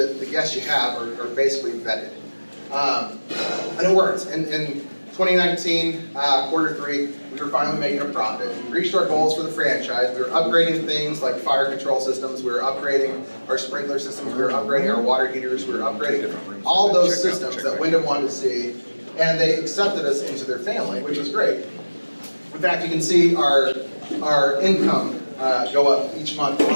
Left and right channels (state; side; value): inverted; both; correlation -1.00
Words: the guests you have are basically vetted. And it worked. In 2019, quarter 3, we were finally making a profit. We reached our goals for the franchise. We were upgrading things like fire control systems. We were upgrading our sprinkler systems. We were upgrading our water heaters. We were upgrading all those systems that Wyndham wanted to see. And they accepted us into their family, which was great. In fact, you can see our income go up each month